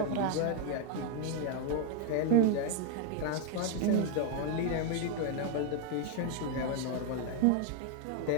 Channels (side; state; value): both; different; correlation 0.00